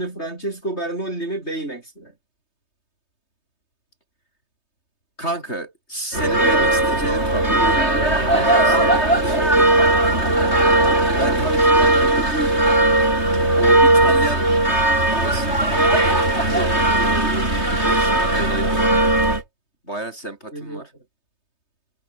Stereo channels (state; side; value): late; right; 3.2 ms